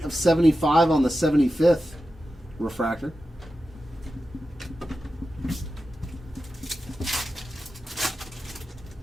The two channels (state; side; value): normal; both; correlation 0.92